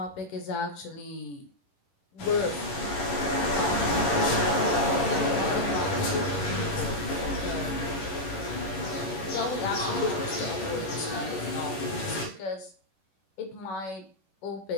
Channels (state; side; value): late; right; 11 ms